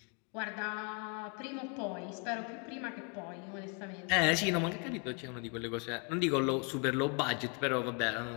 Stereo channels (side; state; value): right; quieter; 35.0 dB